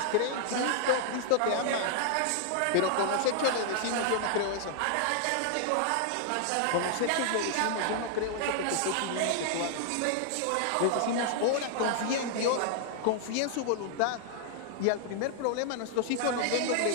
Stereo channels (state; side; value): different; both; correlation -0.01